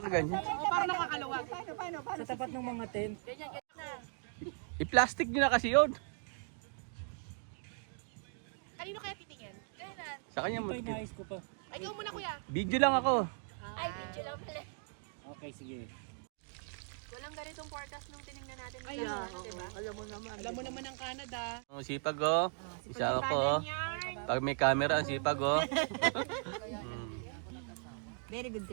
Parang nakakaluwag. Paano? Sa tapat ng mga tent. I-plastic nyo na kasi yun. Kanino kaya titingin? Kailan? Sa kanya mo. Ito inayos ko pa. Ay, ikaw muna kuya. Video lang ako. Ay, video lang pala. Okay, sige. Walang ganitong forecast nung tinignan natin. Ay, diba? Alam mo naman ang Canada. Ang sipag oh. Isa ako oh. Pag may camera, ang sipag oh. Very good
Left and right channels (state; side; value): silent; left; 53 dB below the other